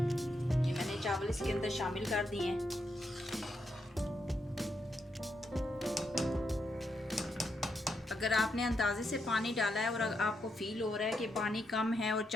ये मैंने चावल इसके अंदर शामिल कर दिए हैं। अगर आपने अंदाजे से पानी डाला है और आपको फील हो रहा है कि पानी कम है और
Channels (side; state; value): both; normal; correlation 0.81